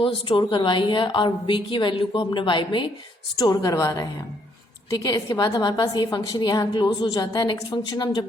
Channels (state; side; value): normal; both; correlation 0.70